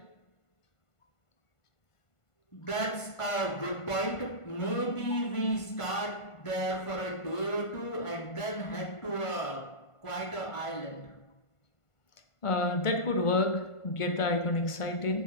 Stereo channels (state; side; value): late; right; 1.5 ms